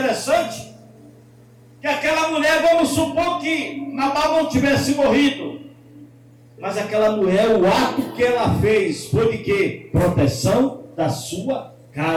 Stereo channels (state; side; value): identical; both; correlation 1.00